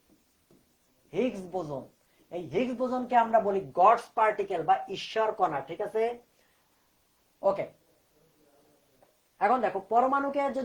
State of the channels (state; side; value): identical; both; correlation 1.00